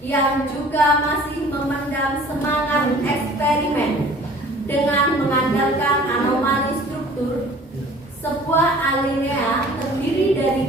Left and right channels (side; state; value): both; normal; correlation 0.49